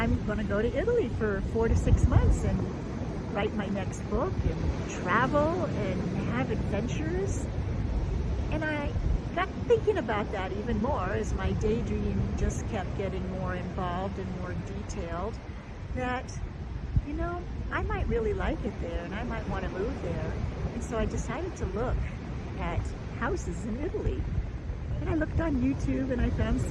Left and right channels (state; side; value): identical; both; correlation 1.00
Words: going to go to Italy for 4 to 6 months and write my next book and travel and have adventures. And I got thinking about that even more as my daydream just kept getting more involved and more detailed, that, I might really like it there and I might want to move there. And so I decided to look at houses in Italy. And I looked on YouTube and I found